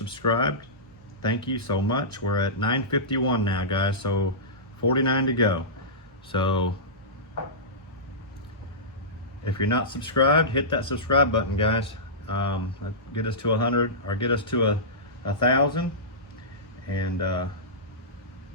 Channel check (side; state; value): both; normal; correlation -0.18